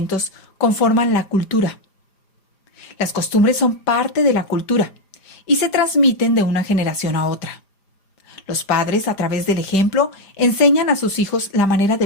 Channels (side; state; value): right; late; 4.9 ms